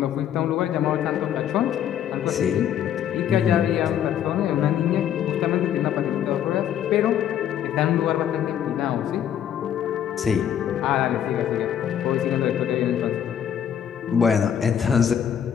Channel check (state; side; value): quieter; right; 9.7 dB